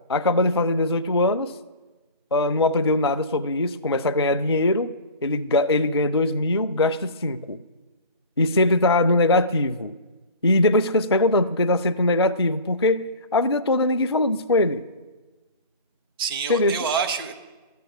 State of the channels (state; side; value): inverted; both; correlation -0.37